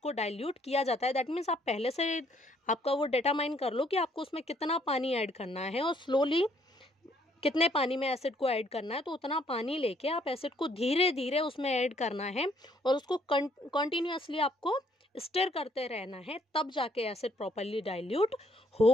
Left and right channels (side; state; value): both; normal; correlation 0.66